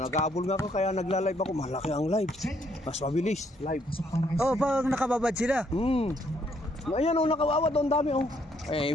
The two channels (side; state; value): both; normal; correlation 0.70